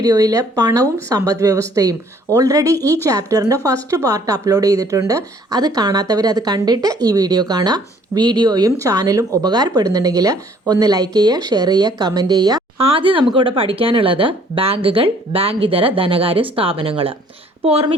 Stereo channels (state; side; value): normal; both; correlation 0.59